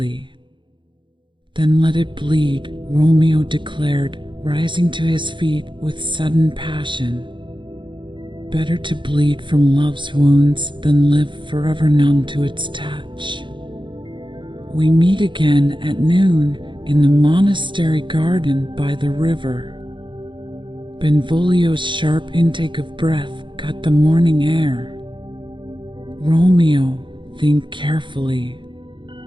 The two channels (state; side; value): late; left; 0.23 ms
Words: "Then let it bleed," Romeo declared, rising to his feet with sudden passion. "Better to bleed from love's wounds than live forever numb to its touch. We meet again at noon in the monastery garden by the river." Benvolio's sharp intake of breath cut the morning air. "Romeo, think carefully.